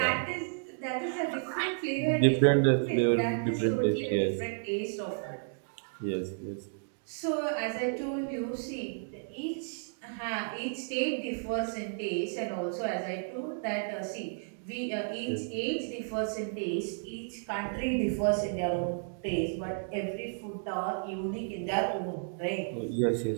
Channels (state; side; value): silent; left; digital silence